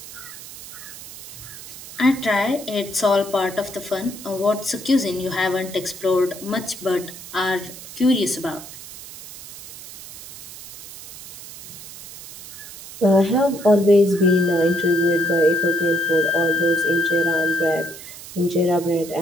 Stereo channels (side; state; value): right; noise; hiss, 15 dB below the sound